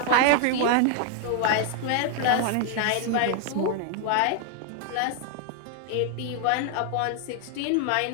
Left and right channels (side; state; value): both; different; correlation 0.00